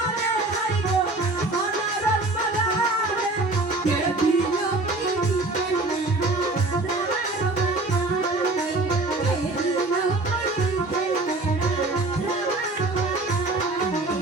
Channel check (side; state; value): left; quieter; 3.0 dB